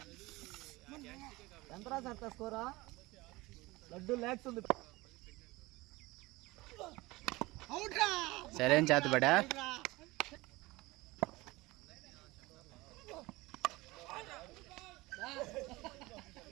ఎంతరా సార్ స్కోరా? లడ్డు ల్యాక్స్ ఉంది. సరే చేతబడా.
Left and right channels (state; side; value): quieter; left; 21.1 dB